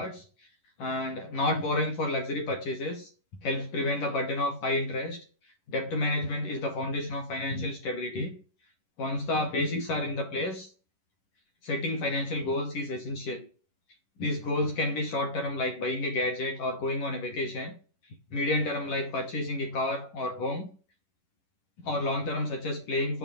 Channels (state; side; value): late; right; 11 ms